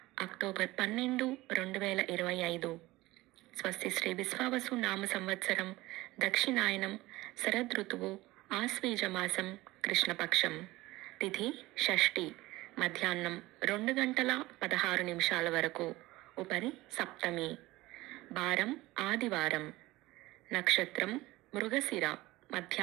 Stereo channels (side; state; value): left; quieter; 19.0 dB